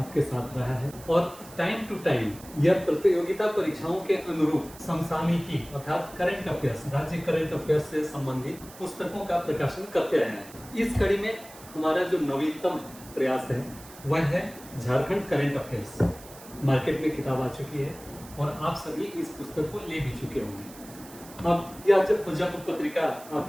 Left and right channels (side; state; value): right; noise; hiss, 19 dB below the sound